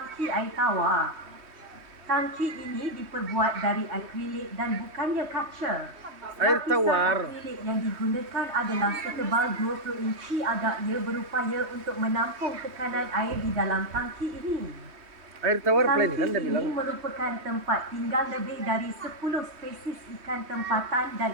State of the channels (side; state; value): left; late; 3.2 ms